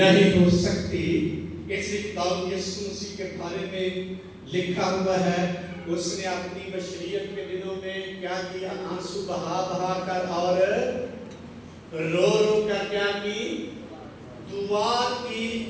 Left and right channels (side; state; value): both; identical; correlation 1.00